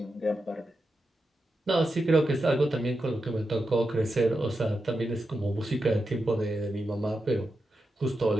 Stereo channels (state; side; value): normal; both; correlation 0.88